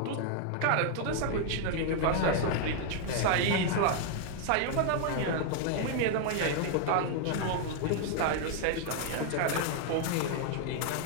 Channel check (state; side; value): different; both; correlation 0.00